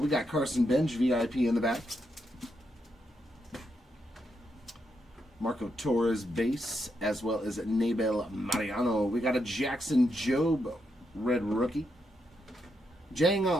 got Carson Bench, VIP in the back. Marco Torres base, as well as Nabel Mariano. We got a Jackson Jobe red rookie. Jang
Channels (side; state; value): both; normal; correlation 0.81